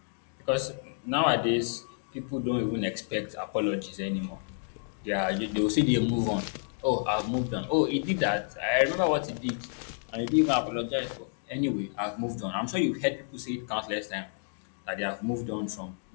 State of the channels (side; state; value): right; silent; digital silence